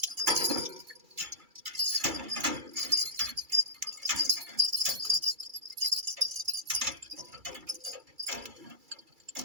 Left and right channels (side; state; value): left; late; 2.3 ms